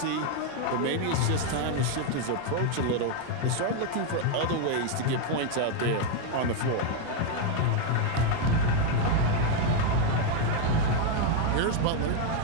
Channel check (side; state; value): both; different; correlation 0.01